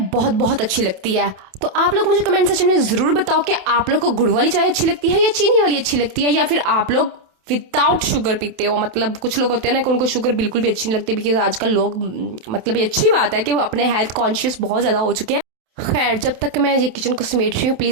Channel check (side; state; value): left; late; 27 ms